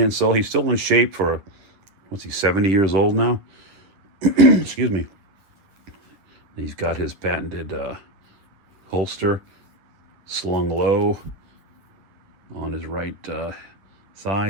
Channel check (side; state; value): left; late; 10 ms